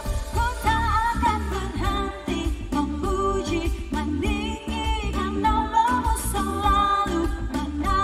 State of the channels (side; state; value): both; identical; correlation 1.00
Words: ku tak akan berhenti memuji, meninggikan nama-Mu, selalu